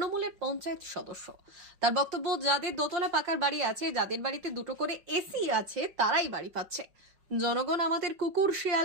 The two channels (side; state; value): left; late; 5.5 ms